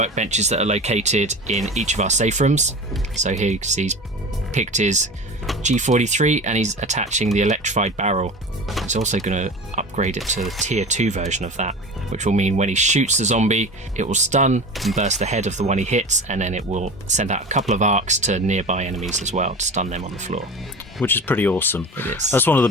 that are located in each of our safe rooms. So here you can see he's picked his G43 and he's attaching the electrified barrel. He's also going to upgrade it to the tier 2 version of that, which will mean when he shoots the zombie, it will stun and burst the head of the one he hits, and then it will send out a couple of arcs to nearby enemies as well to stun them on the floor. Which is pretty awesome. It is. That's one of the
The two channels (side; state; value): both; normal; correlation 0.34